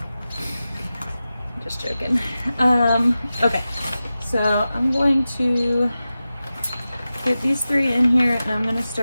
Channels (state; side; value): inverted; both; correlation -0.94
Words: Just joking. Okay, so I'm going to get these 3 in here, and I'm going to